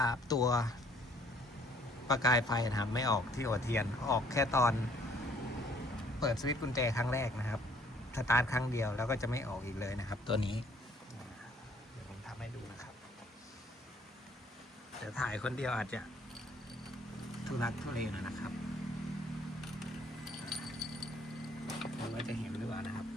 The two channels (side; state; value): both; normal; correlation 0.61